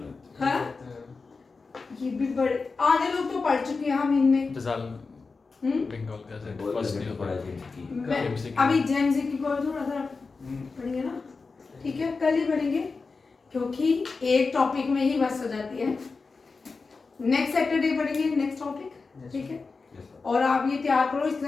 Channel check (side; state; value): right; quieter; 4.3 dB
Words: हाँ ये भी बड़े आधे लोग तो पढ़ चुके हैं हम इनमें। फिजाल हम्म? बंगाल का से बहुत फर्स्ट लेवल ईयर पढ़ा है जी। मैं MCQ अभी जेमजी की कोई थोड़ा सा पढ़ेंगे ना, ठीक है, कल ही पढ़ेंगे क्योंकि एक टॉपिक में ही बस हो जाती है। नेक्स्ट सैटरडे पढ़ेंगे नेक्स्ट टॉपिक, ठीक है। Yes, sir. और आप ये तैयार करो, इसके